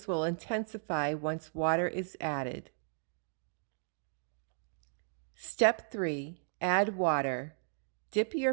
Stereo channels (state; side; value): silent; left; digital silence